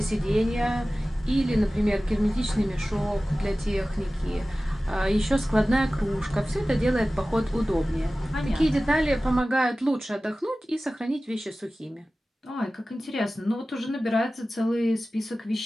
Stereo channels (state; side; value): normal; both; correlation 0.96